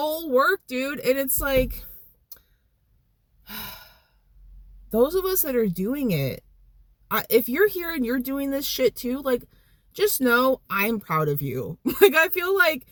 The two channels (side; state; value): both; identical; correlation 1.00